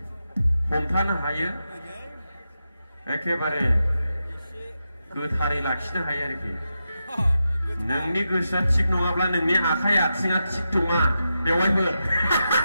हमथानो हायो एखेबारे गोथारै लाखिनो हायो आरोखि नोंनि गोसोआ थिग नङाब्ला नोंनि आखाइ आथिङा थिग नङा बेवहायफोर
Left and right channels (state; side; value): inverted; both; correlation -0.89